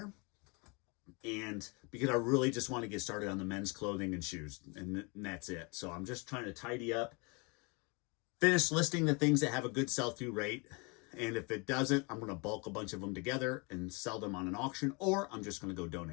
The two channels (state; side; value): quieter; right; 30.6 dB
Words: And because I really just want to get started on the men's clothing and shoes, and that's it. So I'm just trying to tidy up, finish listing the things that have a good sell-through rate. And if it doesn't, I'm going to bulk a bunch of them together and sell them on an auction, or I'm just going to go